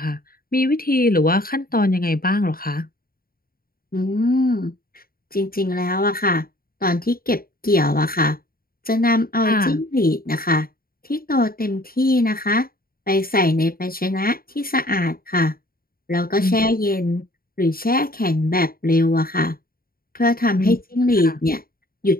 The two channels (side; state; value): right; late; 0.43 ms